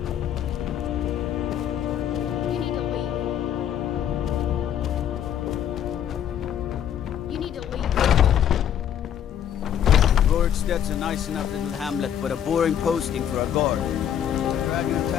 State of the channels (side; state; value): right; quieter; 9.7 dB